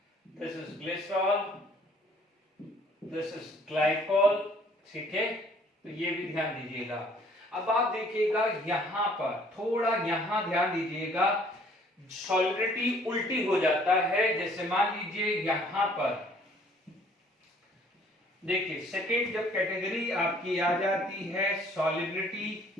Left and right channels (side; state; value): both; normal; correlation 0.58